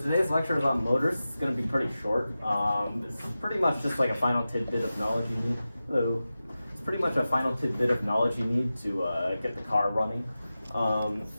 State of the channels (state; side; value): inverted; both; correlation -0.94